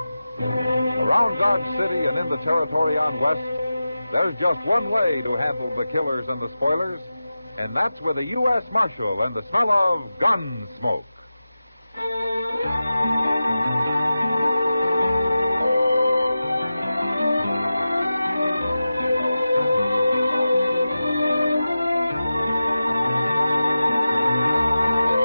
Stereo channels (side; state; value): both; inverted; correlation -0.94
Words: Around Dodge City and in the territory on West, there's just one way to handle the killers and the spoilers, and that's with a U.S. Marshal and the smell of Gunsmoke.